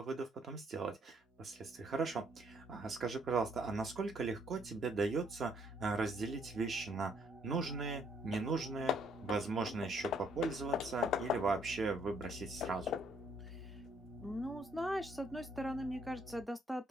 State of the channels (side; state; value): both; normal; correlation 0.67